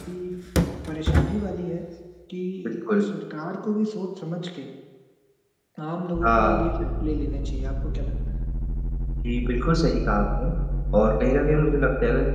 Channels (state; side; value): identical; both; correlation 1.00